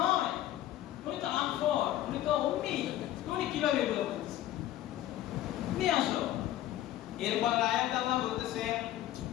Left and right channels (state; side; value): quieter; right; 13.5 dB